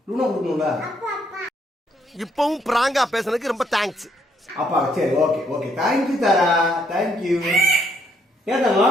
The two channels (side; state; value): both; normal; correlation 0.71